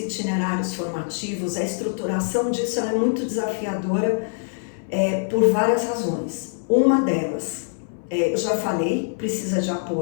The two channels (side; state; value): right; silent; 60 dB below the other